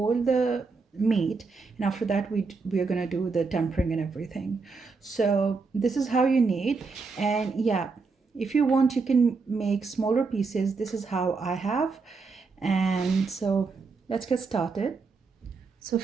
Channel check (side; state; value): left; quieter; 4.4 dB